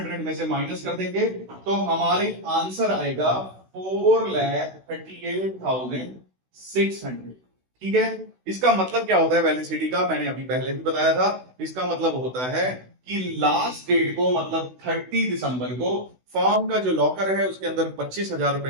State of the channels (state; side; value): late; left; 16 ms